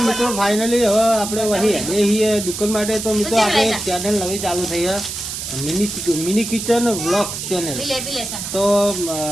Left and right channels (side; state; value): right; noise; hiss, 6 dB below the sound